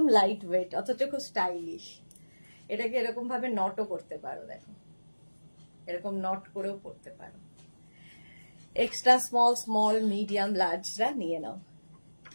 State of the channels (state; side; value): inverted; both; correlation -1.00